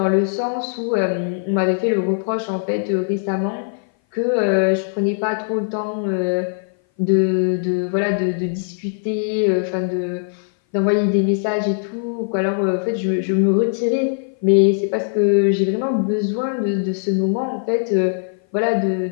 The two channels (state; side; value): silent; right; 58 dB below the other